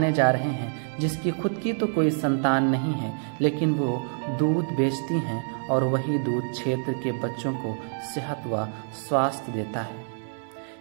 जा रहे हैं जिसकी खुद की तो कोई संतान नहीं है, लेकिन वो दूध बेचती हैं और वही दूध क्षेत्र के बच्चों को सेहत व स्वास्थ्य देता है।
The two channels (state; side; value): silent; left; digital silence